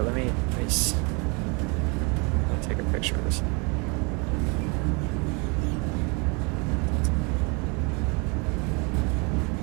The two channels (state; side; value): quieter; left; 31.4 dB